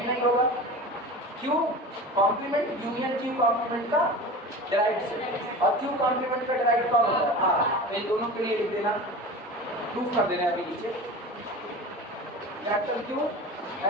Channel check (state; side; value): normal; both; correlation 0.33